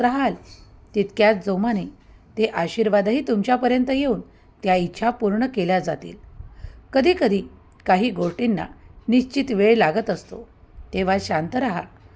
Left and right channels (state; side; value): identical; both; correlation 1.00